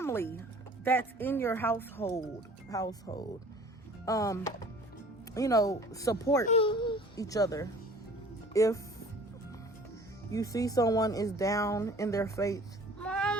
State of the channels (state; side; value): normal; both; correlation 0.48